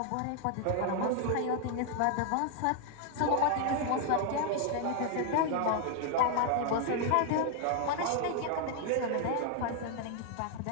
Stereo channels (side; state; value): both; different; correlation 0.00